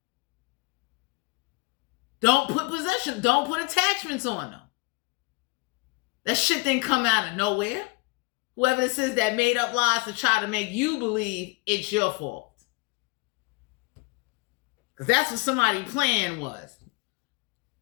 Don't put possession. Don't put attachments on them. That shit didn't come out of nowhere. Whoever this is that made up lies to try to make you believe it's your fault. Because that's what somebody's plan was.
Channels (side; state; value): right; quieter; 27.4 dB